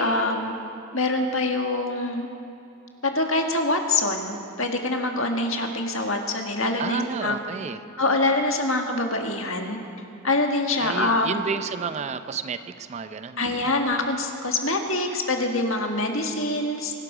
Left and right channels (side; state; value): both; normal; correlation -0.01